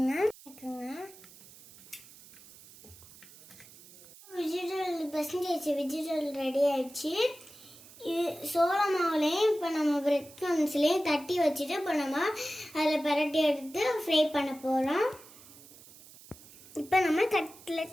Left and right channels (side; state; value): right; noise; hiss, 21 dB below the sound